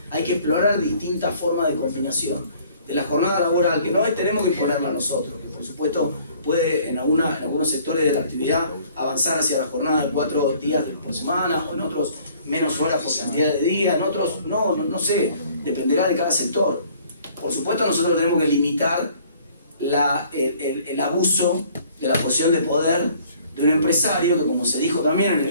hay que explorar distintas formas de combinación de la jornada laboral, que no tenemos que imponerla a nosotros, que por supuesto puede en algunos sectores de la actividad avanzar hacia la jornada de 4 días por semana, o en otros menos horas por cantidad de días, en otros no sé, dependerá de cada sector. Por supuesto nosotros tenemos que limitar el abuso de la posición de poder de un empresario, que como se dijo también en el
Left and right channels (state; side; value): inverted; both; correlation -0.57